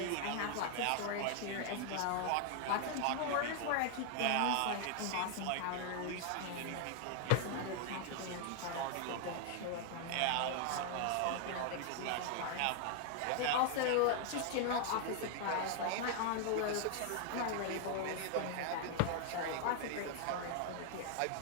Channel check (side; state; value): both; different; correlation 0.00